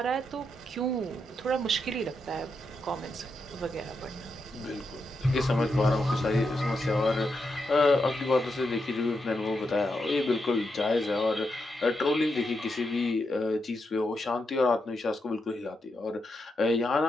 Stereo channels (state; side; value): normal; both; correlation 0.84